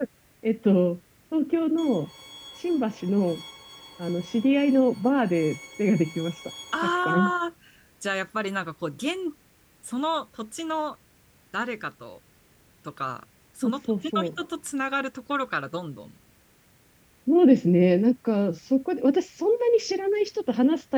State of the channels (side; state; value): both; identical; correlation 1.00